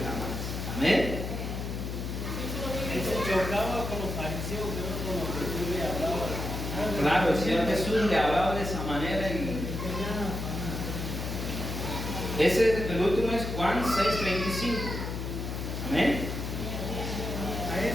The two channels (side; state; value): left; noise; hum, 4 dB below the sound